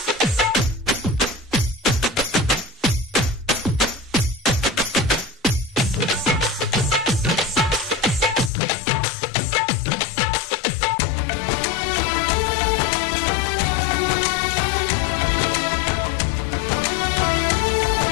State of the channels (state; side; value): drops out; right; at 8.5 s